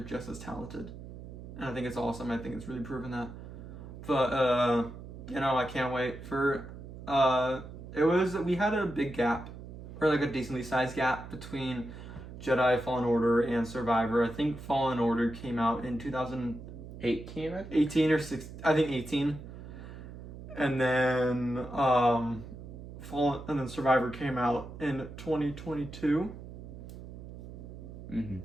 as talented, and I think it's awesome. I think it's really proven that. But I can't wait for. We had a big gap, or like a decently sized gap between Jedi Fallen Order and Survivor. I think Fallen Order came out in 2018, 18 or 6, I think 18. And then Survivor came out in 2022. Mm-hmm.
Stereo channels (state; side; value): noise; right; hum, 12 dB below the sound